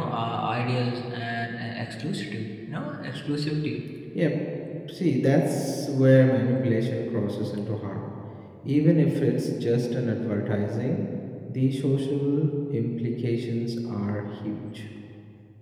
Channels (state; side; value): identical; both; correlation 1.00